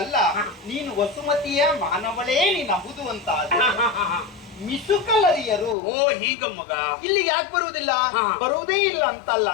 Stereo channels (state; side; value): drops out; right; at 5.8 s